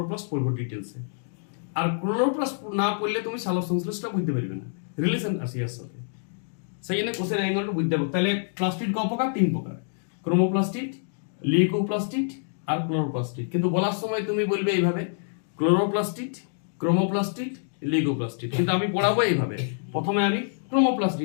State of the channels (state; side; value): silent; right; digital silence